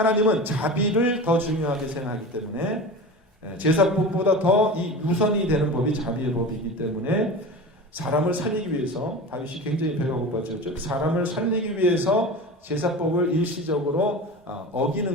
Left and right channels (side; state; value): both; normal; correlation 0.31